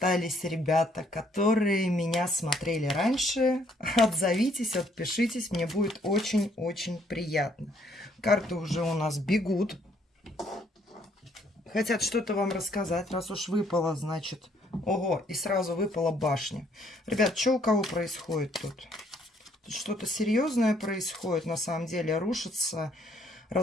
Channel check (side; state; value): both; normal; correlation 0.67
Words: ребята, которые меня смотрели раньше, отзовитесь, отпишитесь, мне будет очень-очень приятно. Карты уже у нас бегут. Хотят что-то вам рассказать, раз уж выпало, значит. Ого, и сразу выпала башня. Ребят, что у кого происходит тут? Тут что-то серьезное происходит, на самом деле. Рушится,